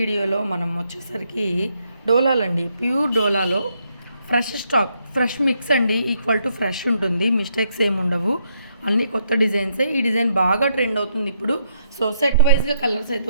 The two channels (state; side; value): inverted; both; correlation -0.75